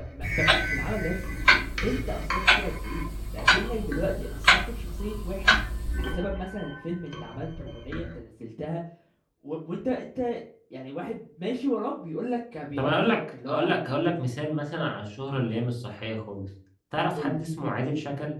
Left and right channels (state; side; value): identical; both; correlation 1.00